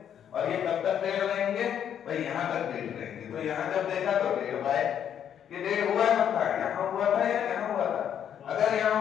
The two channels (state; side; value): quieter; right; 9.2 dB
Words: और ये कब तक 1.5 रहेंगे भाई, यहाँ तक 1.5 रहेंगे। तो यहाँ जब देखा तो 1.5 पाए, ये 1.5 हुआ कब था, यहाँ हुआ था या यहाँ हुआ था? अगर यहाँ